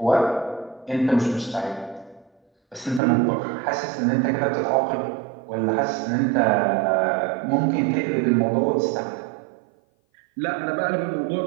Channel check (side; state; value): left; drops out; at 3.0 s